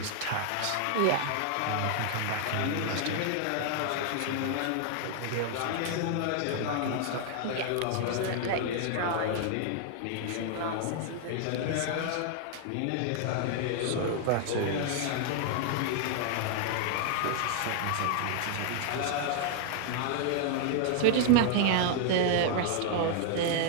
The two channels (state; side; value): different; both; correlation 0.00